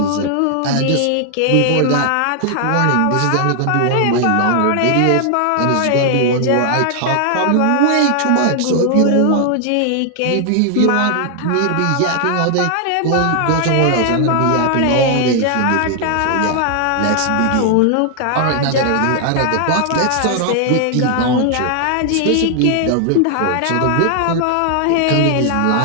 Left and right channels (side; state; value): both; different; correlation 0.00